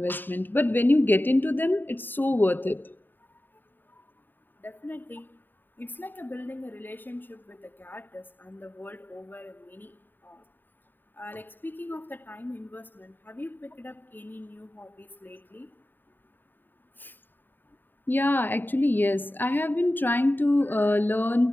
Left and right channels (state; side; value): late; right; 0.092 ms